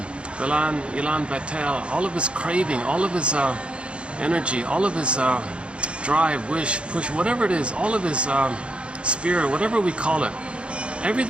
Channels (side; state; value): left; late; 0.058 ms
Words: betel, all of his craving, all of his energy, all of his drive, wish, push, whatever it is, all of his spirit, whatever we call it.